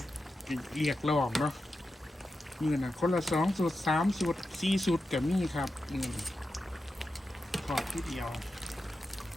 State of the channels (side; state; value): both; normal; correlation 0.90